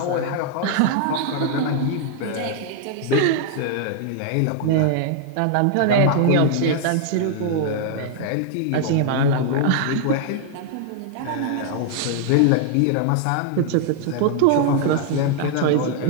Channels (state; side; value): different; both; correlation 0.00